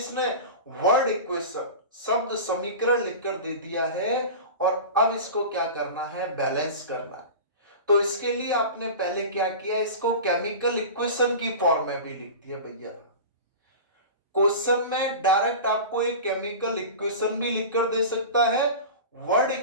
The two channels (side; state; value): both; inverted; correlation -0.31